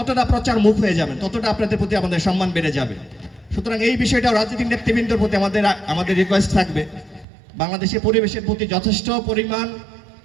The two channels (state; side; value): drops out; left; at 7.2 s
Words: প্রচার মুখ হয়ে যাবেন, ততটা আপনাদের প্রতি আমাদের সম্মান বেড়ে যাবে। সুতরাং এই বিষয়টা রাজনৈতিক নেতৃবৃন্দের প্রতি আমাদের রিকোয়েস্ট থাকবে, বাংলাদেশের পরিবেশের প্রতি যথেষ্ট পরিমাণ